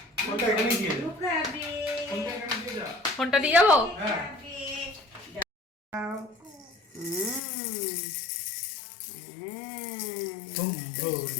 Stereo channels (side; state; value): right; drops out; at 7.4 s